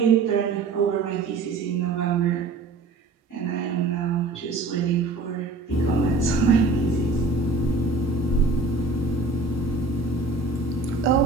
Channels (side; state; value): left; quieter; 3.7 dB